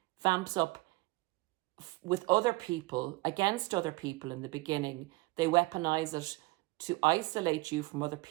vamps up with other people, against other people in the beginning. They weaponize it to isolate you from other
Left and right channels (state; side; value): quieter; left; 22.2 dB